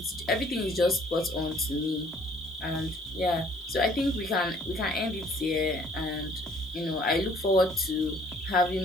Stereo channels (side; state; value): both; normal; correlation 0.58